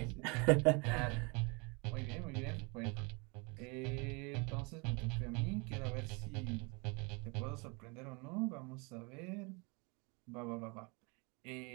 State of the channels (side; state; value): left; quieter; 30.5 dB